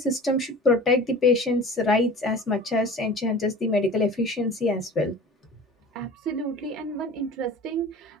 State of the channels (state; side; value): normal; both; correlation 0.40